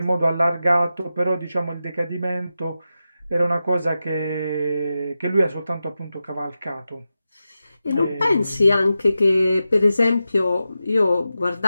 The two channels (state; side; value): inverted; both; correlation -0.91